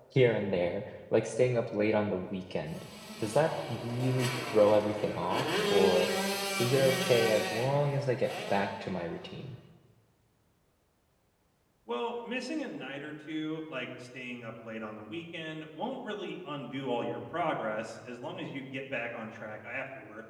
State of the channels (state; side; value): identical; both; correlation 1.00